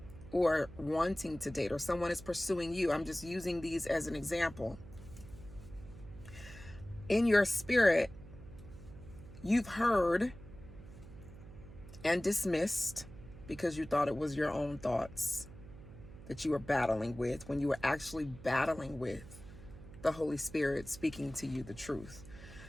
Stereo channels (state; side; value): noise; right; hum, 16 dB below the sound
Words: or wanting to date, or someone is pursuing you. I'm just using these as an example. In your spirit, you've heard and dismissed because you thought it was your own thoughts that you were battling with, when you were actually battling with the Holy Spirit speaking to you the truth